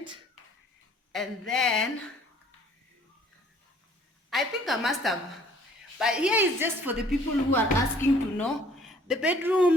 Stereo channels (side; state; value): both; normal; correlation 0.57